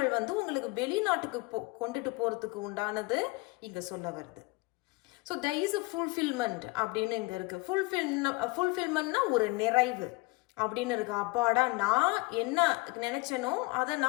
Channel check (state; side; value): quieter; right; 25.0 dB